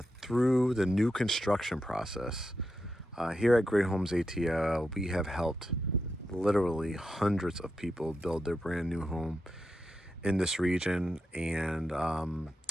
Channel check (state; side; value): normal; both; correlation 0.86